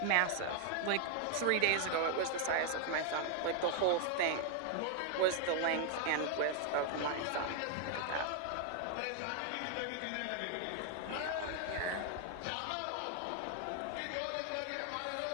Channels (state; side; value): different; both; correlation 0.00